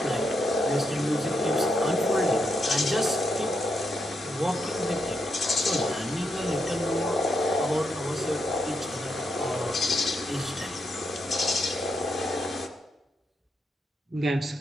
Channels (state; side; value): normal; both; correlation 0.81